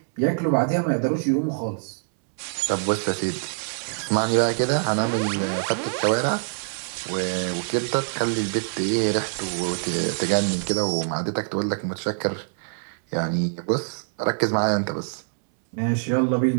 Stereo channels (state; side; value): silent; left; 62 dB below the other